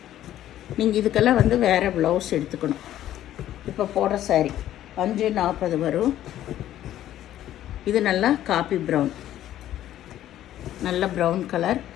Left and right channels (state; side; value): quieter; right; 12.5 dB